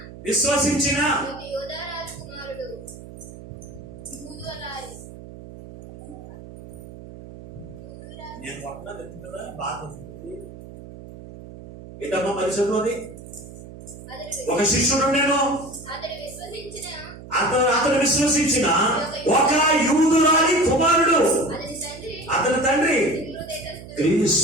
విశ్వసించిన నేను పట్టణం ఎత్తు కదా బాధ వస్తుంది ఏంటమ్మా మరి చదువుది. ఒక శిష్యుడు నేను అతను విశ్వసించిన ఒక యూదురాలి కుమారుడు, అతని తండ్రి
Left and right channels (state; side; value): noise; right; hum, 15 dB below the sound